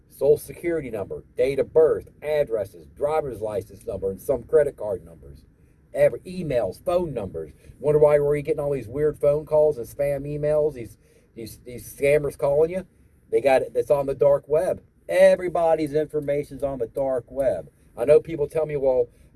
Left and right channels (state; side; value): identical; both; correlation 1.00